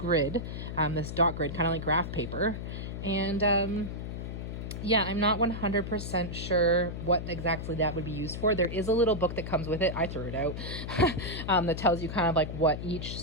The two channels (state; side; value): noise; left; hum, 6 dB below the sound